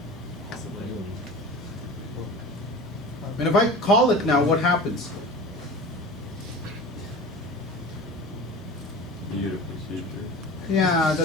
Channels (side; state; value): both; normal; correlation 0.35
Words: And if I call it now, what happens? You get a procedure. Yeah,